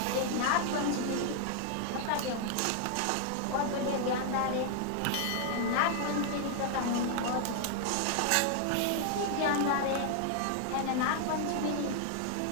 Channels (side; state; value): both; different; correlation 0.00